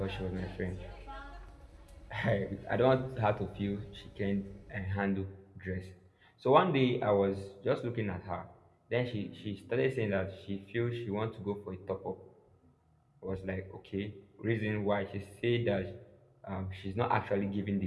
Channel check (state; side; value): identical; both; correlation 1.00